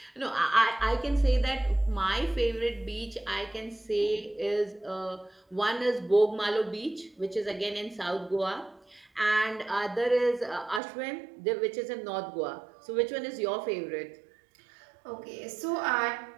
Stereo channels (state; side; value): drops out; left; at 10.8 s